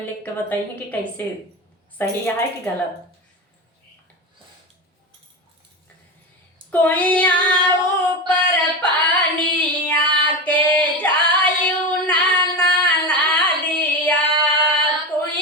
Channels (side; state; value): both; normal; correlation 0.21